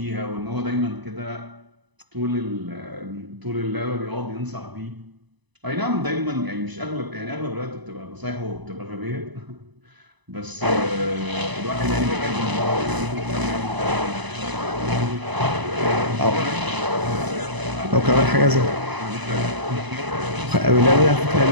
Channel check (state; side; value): late; left; 1.0 ms